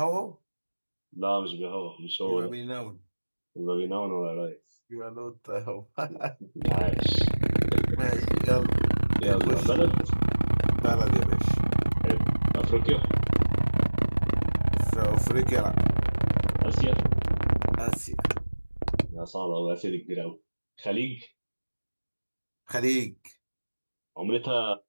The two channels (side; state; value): both; inverted; correlation -1.00